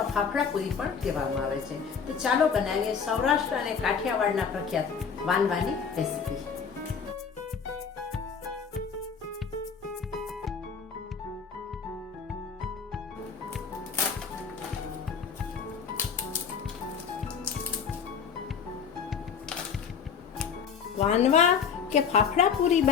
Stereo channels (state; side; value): quieter; right; 6.5 dB